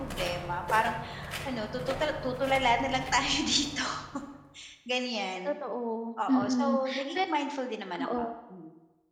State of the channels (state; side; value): identical; both; correlation 1.00